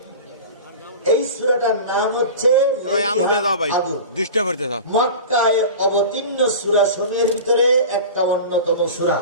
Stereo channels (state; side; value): inverted; both; correlation -0.33